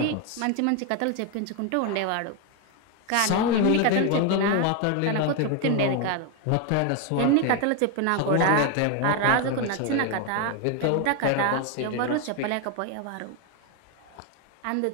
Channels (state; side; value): different; both; correlation 0.01